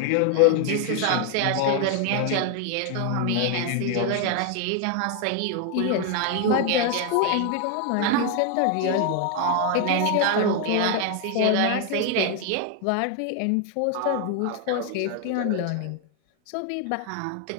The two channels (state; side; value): different; both; correlation 0.01